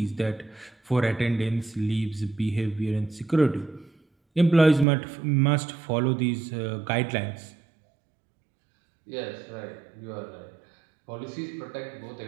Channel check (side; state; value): left; drops out; at 4.9 s